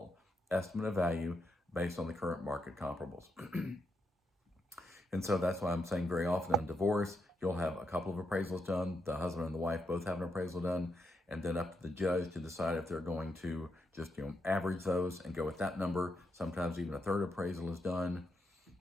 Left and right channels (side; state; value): both; normal; correlation 0.81